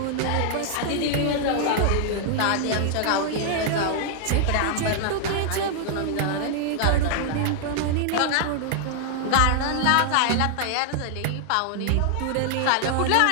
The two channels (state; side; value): different; both; correlation -0.01